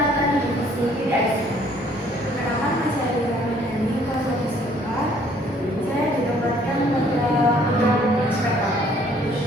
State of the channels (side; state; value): both; normal; correlation 0.60